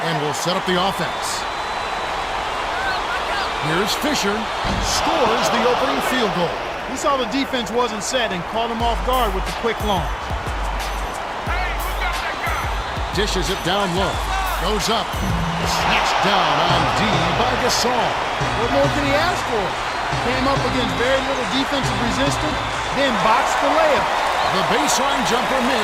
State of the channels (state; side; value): identical; both; correlation 1.00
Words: and will set up the offense. Here's Fisher. Scores the opening field goal. He saw the defense wasn't set and caught him off guard with the quick launch. Dishes it down low. Goes up. Snatched down on D by Gasol. What more can he ask for? Came up against very little defensive resistance, then boxed the layup. The baseline jumper